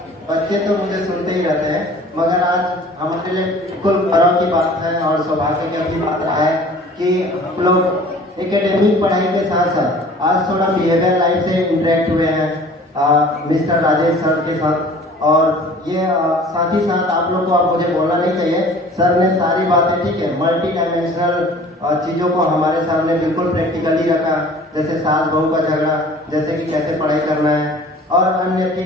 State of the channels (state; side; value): normal; both; correlation 0.47